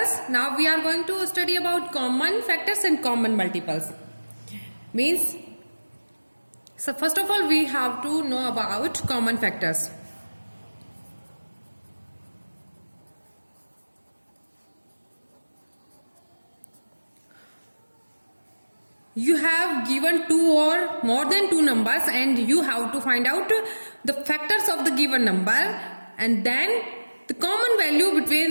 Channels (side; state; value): both; inverted; correlation -1.00